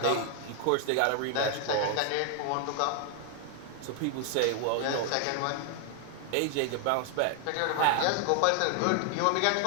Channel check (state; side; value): different; both; correlation 0.00